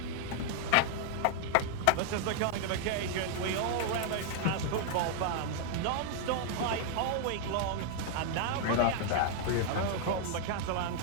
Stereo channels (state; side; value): different; both; correlation -0.01